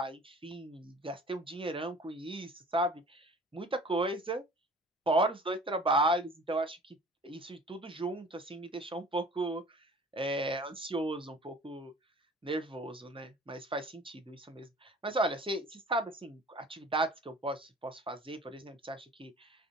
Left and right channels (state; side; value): normal; both; correlation 0.46